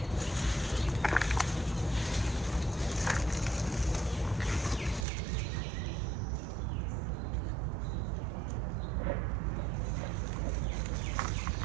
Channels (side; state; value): left; drops out; at 5.1 s